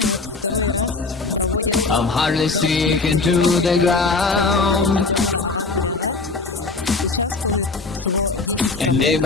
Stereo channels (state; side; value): quieter; right; 3.8 dB